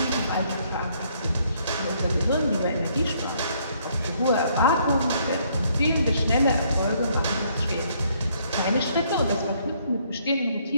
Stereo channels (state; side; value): inverted; both; correlation -0.67